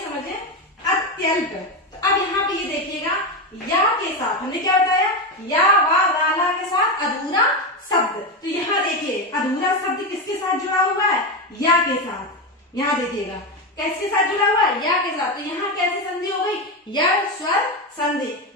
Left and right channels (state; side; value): normal; both; correlation 0.14